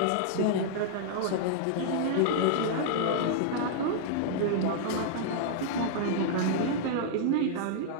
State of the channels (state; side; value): different; both; correlation -0.01